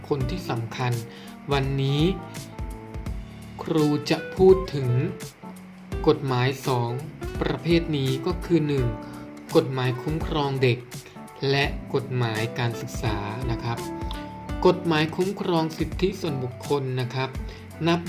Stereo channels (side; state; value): both; identical; correlation 1.00